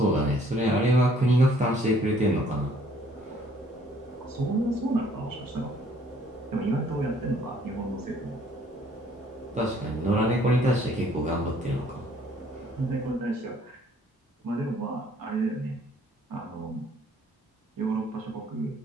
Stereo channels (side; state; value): both; normal; correlation 0.61